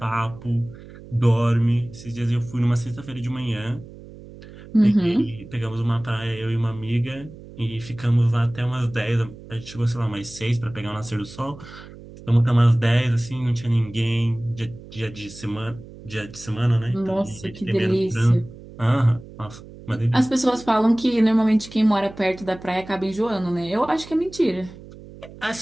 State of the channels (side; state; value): right; noise; hum, 17 dB below the sound